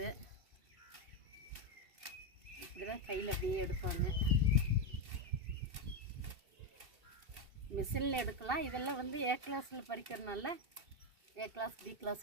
இப்படி தான் கையில் அப்படியே எடுப்பாங்க. மிஷினில் எடுக்கலாம். இதெல்லாம் வந்து ஏ கிளாஸில் பறிக்கிறதுனால ஏ கிளாஸ் பி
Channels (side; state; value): left; late; 2.6 ms